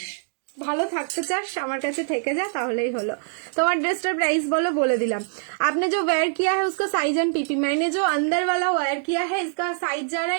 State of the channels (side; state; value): left; silent; digital silence